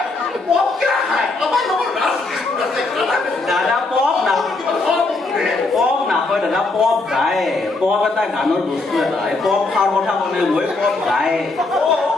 দাদা পপ নাপায় দাদা পপ গায় পপ এটা গানৰ বস্তু এটা পপ খাৰ কথা কলে মই পপ গায়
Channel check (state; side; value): quieter; right; 3.4 dB